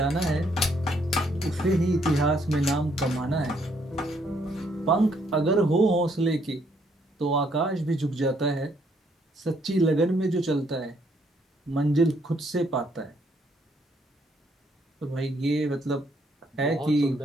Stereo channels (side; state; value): both; normal; correlation 0.70